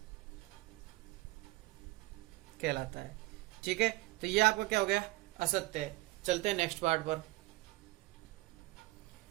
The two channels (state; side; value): quieter; left; 20.8 dB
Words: कहलाता है। ठीक है, तो ये आपका क्या हो गया? असत्य है। चलते हैं नेक्स्ट पार्ट पर।